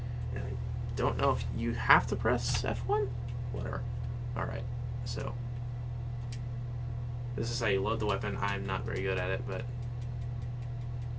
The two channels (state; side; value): identical; both; correlation 1.00